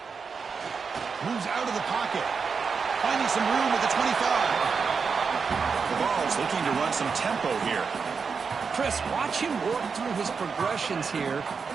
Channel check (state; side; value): quieter; left; 5.5 dB